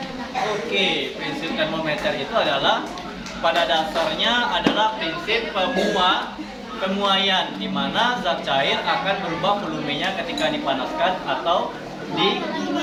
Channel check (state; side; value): identical; both; correlation 1.00